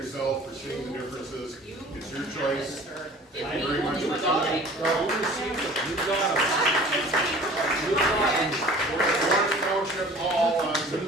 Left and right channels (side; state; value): both; normal; correlation 0.46